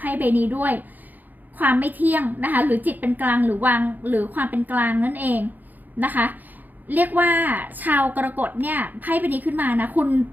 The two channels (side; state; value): left; late; 0.085 ms